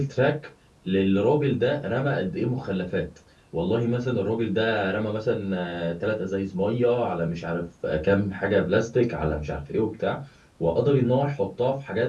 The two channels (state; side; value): identical; both; correlation 1.00